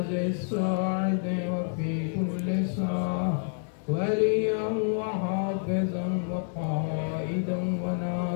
الساعة وفي كل ساعة وليا وحافظا وقائدا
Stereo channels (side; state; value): right; silent; 59 dB below the other